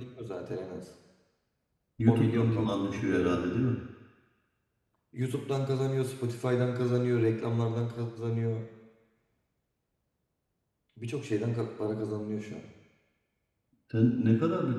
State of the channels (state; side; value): identical; both; correlation 1.00